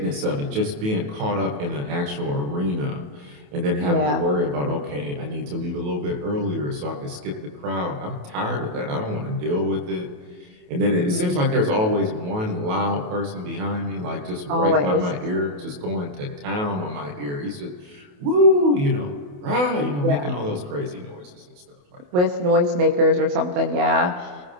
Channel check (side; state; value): left; late; 28 ms